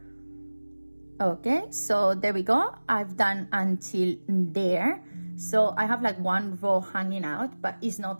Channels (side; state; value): both; inverted; correlation -1.00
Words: Okay, so there we go. I've done until there. So I have like 1 row hanging out, but it's not